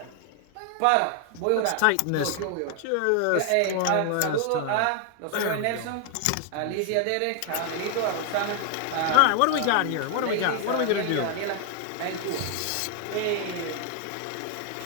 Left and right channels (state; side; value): different; both; correlation 0.00